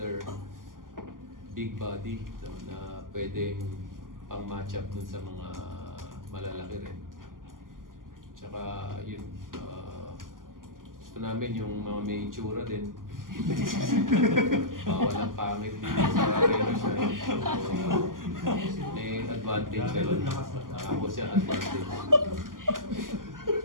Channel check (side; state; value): left; late; 0.91 ms